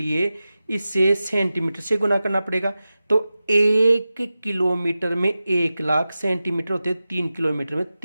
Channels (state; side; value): inverted; both; correlation -0.94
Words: इसे सेंटीमीटर से गुना करना पड़ेगा। तो 1 किलोमीटर में 1,00,000 सेंटीमीटर होते हैं, 3 किलोमीटर में